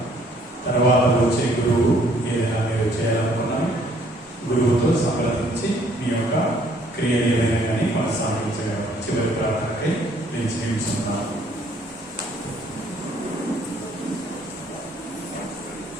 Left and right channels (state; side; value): normal; both; correlation 0.63